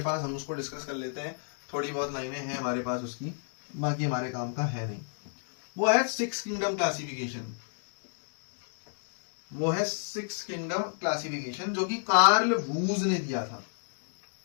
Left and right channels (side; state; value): right; silent; digital silence